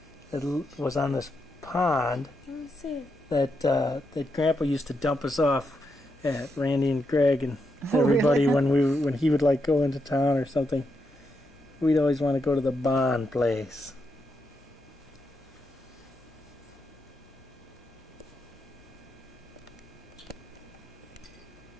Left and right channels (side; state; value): both; normal; correlation 0.83